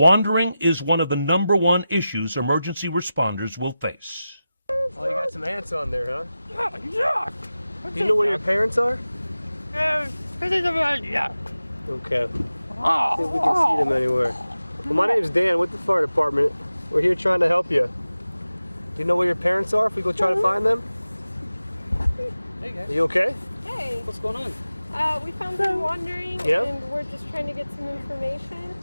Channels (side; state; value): both; inverted; correlation -0.94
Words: is one of the #1 issues emergency responders will face. Oh, you got some ants on there, huh? Yeah. Do you know where your parents are? Yeah. Okay. See if we can see them anywhere. Well, my name's Dan with the fire department. We're here trying to help you. Do you know where your parents are if we go try to find them? Hey guys. Are you okay? Hey. What's going on? We found them wandering, and we're just trying to get some information.